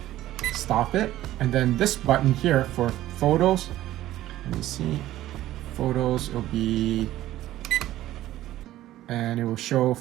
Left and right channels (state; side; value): quieter; left; 14.4 dB